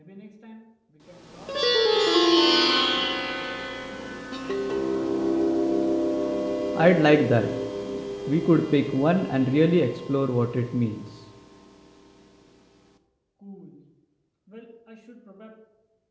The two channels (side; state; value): both; identical; correlation 1.00